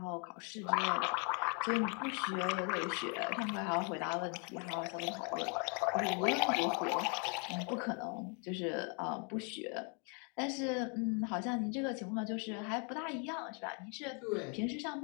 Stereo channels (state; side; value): quieter; right; 37.2 dB